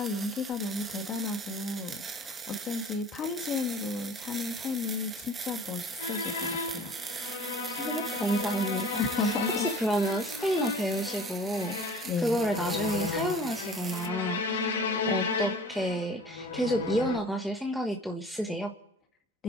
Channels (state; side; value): normal; both; correlation 0.45